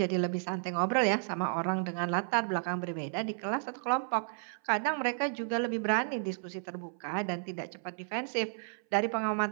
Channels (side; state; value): left; silent; 56 dB below the other